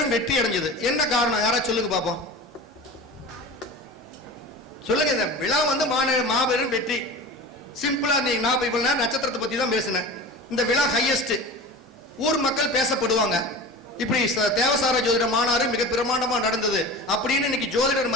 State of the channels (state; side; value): normal; both; correlation 0.33